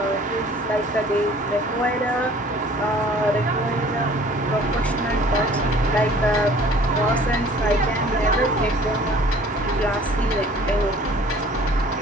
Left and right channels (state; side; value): normal; both; correlation 0.51